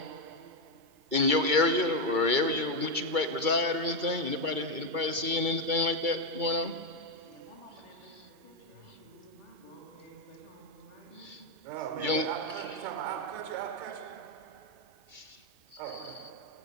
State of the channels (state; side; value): late; left; 2.3 ms